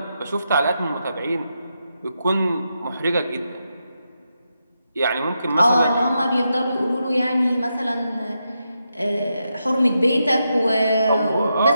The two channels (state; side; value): inverted; both; correlation -0.85